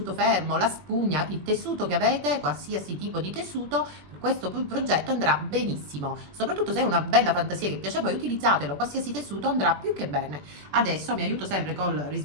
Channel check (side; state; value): left; late; 21 ms